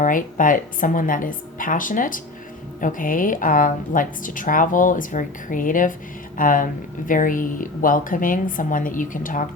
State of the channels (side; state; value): right; quieter; 3.0 dB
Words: right? But someone that is passionate, okay, likes to travel, is very creative, very welcoming, someone that you can talk